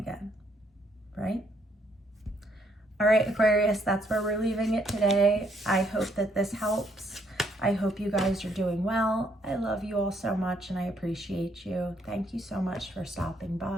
right? All right, Aquarius, that's where we're leaving it today. I hope that this helps. I hope you guys are doing well. I love you all so much and I appreciate you. Thank you so much for stopping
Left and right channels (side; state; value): both; normal; correlation 0.71